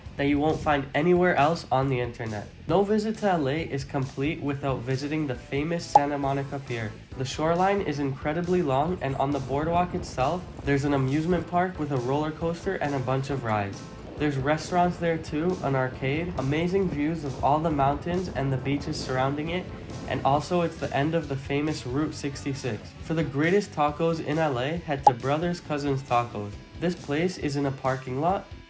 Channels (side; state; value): both; identical; correlation 1.00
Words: that you won't find anywhere else on the internet. No visit to LA is complete without visiting the famous Santa Monica Pier. The shoreline is incredibly long, and on the boardwalk itself, there's an amusement park with a roller coaster and a bunch of rides. There's restaurants there too, an arcade, amazing views of all the mountains and the beaches surrounding it, and also it's the end of the famous Route 66. For the greatest tacos in LA, head to Brothers Cousins Tacos. This place is in a parking lot,